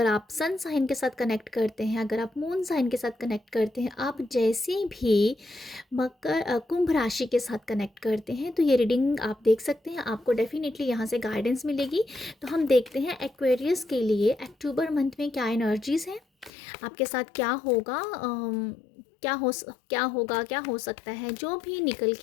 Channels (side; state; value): right; drops out; at 16.5 s